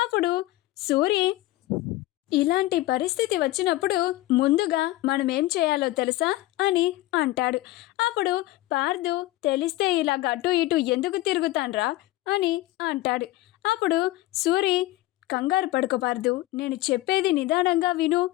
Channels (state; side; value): quieter; right; 17.2 dB